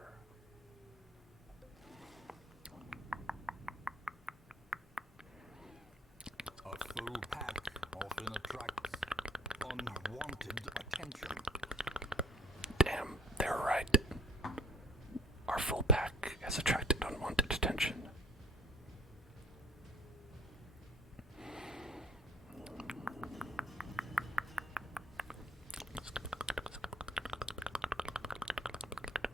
A full pack often attracts unwanted attention. Damn, they're right. Our full pack has attracted unwanted attention.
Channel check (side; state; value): both; normal; correlation 0.53